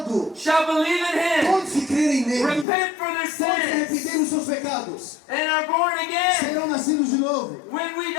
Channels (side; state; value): right; drops out; at 2.7 s